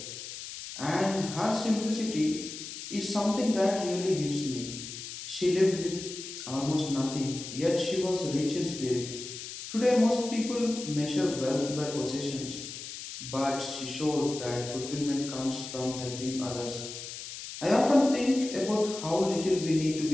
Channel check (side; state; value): left; noise; hiss, 10 dB below the sound